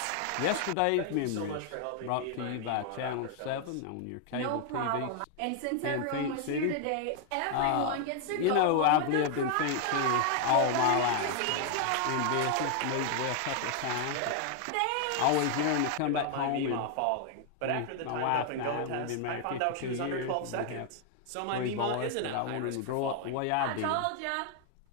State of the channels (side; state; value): both; different; correlation 0.00